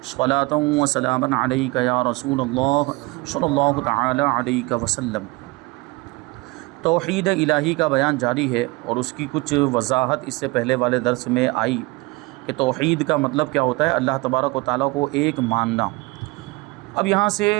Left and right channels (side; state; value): left; quieter; 23.8 dB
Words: صلاۃ وسلاما علیک یا رسول اللہ صلی اللہ تعالی علیہ وسلم۔ توحید الہی کا بیان جاری ہے اور اس کی کچھ وضاحت اس سے پہلے والے درس میں آئی کہ توحید کا مطلب کیا ہوتا ہے، اللہ تبارک و تعالیٰ کو ایک ماننا۔ اب یہاں سے